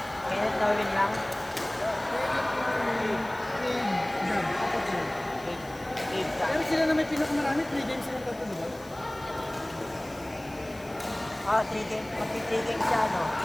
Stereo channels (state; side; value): noise; left; hiss, 23 dB below the sound